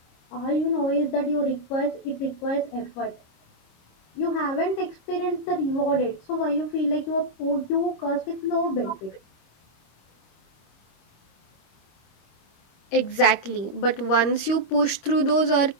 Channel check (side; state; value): right; late; 26 ms